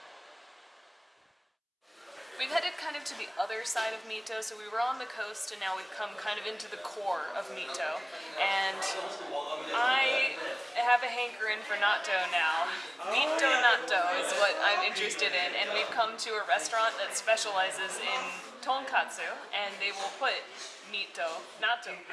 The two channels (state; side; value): identical; both; correlation 1.00